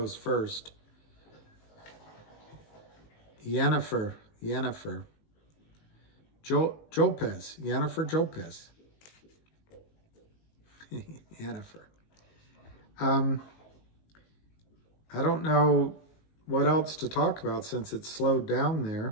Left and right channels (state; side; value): late; right; 19 ms